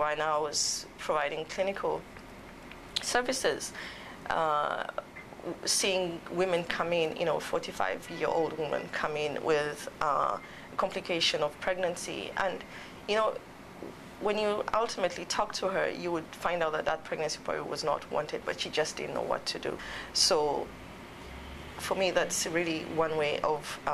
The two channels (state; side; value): identical; both; correlation 1.00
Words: I was providing clinical services, seeing women come in, 45-year-old women come in with complication of pregnancy. And, when you ultimately talk to her, you would find out that that pregnancy probably was not wanted, but she just didn't know what to do. So for me, that's really one way of